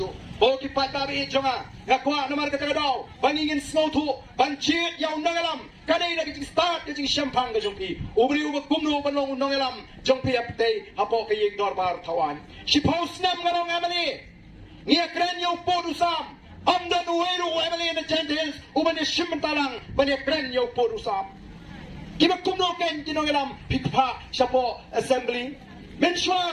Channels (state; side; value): identical; both; correlation 1.00